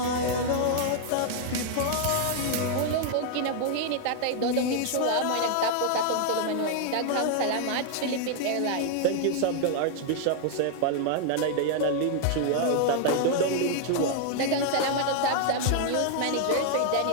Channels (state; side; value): different; both; correlation 0.00